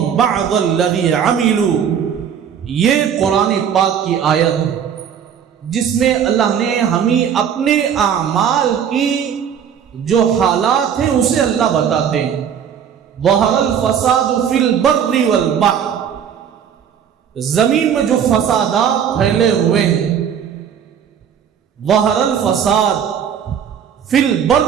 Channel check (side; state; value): left; quieter; 8.2 dB